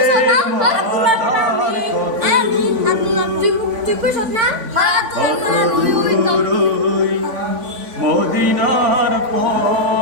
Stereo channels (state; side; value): late; left; 3.5 ms